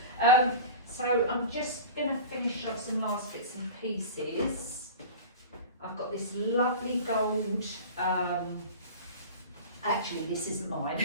So I'm just going to finish off some last bits and pieces. I've got this lovely gold, actually this isn't mine.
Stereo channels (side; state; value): both; inverted; correlation -0.34